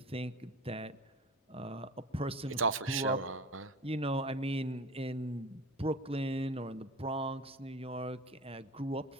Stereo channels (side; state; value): both; normal; correlation 0.34